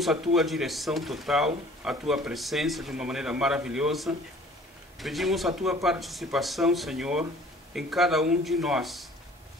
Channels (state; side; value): normal; both; correlation 0.51